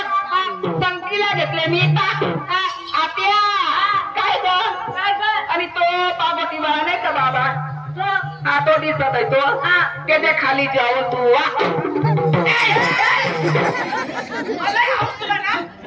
संकीला घेतले मी पाच आत्या काय ग काय कर आणि तो पार्वती बाळा नाही का बाबा तो हा तो दिसत आहे तो त्याच्या खाली जाऊन तू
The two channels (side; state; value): both; identical; correlation 1.00